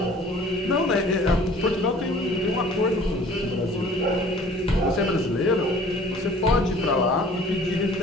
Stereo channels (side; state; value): both; normal; correlation 0.50